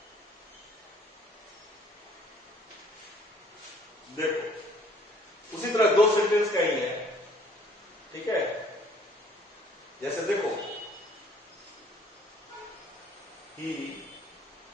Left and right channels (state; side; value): normal; both; correlation 0.58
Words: देखो उसी तरह दो सेंटेंस का ही है, ठीक है। जैसे देखो, ही